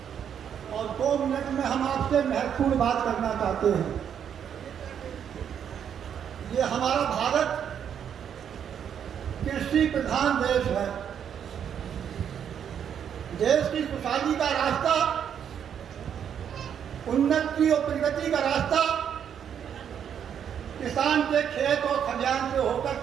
और 2 मिनट में हम आपसे महत्वपूर्ण बात करना चाहते हैं। ये हमारा भारत कृषि प्रधान देश है। देश की खुशहाली का रास्ता, उन्नति और प्रगति का रास्ता किसान के खेत और खलिहान से होकर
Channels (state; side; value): quieter; left; 8.5 dB